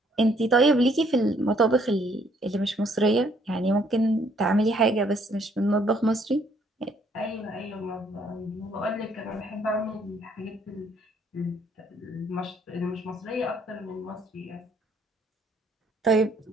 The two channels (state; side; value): normal; both; correlation 0.66